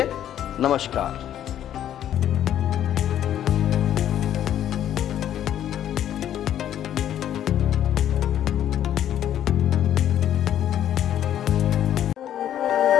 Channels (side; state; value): right; quieter; 10.9 dB